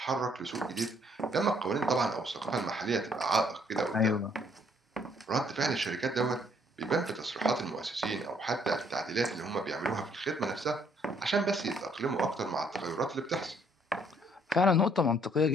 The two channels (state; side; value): normal; both; correlation 0.66